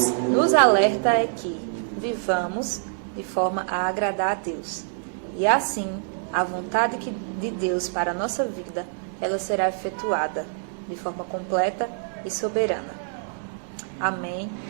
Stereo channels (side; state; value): left; silent; digital silence